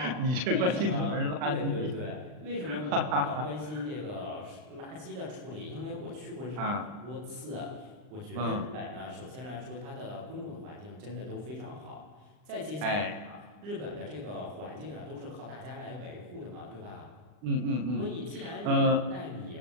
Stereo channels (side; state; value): left; late; 39 ms